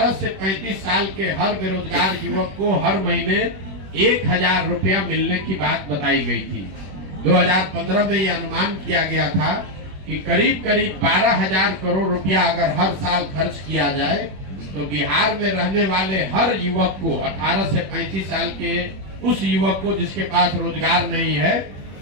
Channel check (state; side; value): late; left; 21 ms